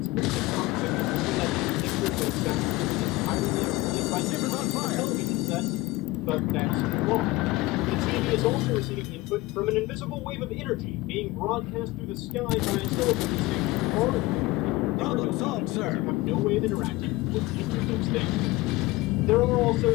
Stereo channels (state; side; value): quieter; right; 20.2 dB